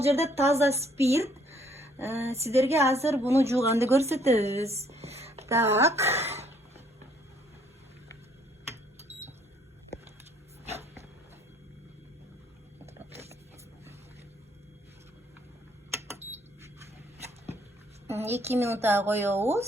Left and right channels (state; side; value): normal; both; correlation 0.65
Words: жерде таза спирт. Сиздерге азыр буну жууганды көрсөтөбүз. Так. Эки минутка